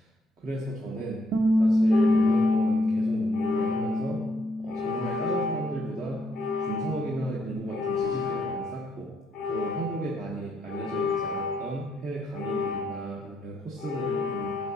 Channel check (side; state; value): both; normal; correlation 0.74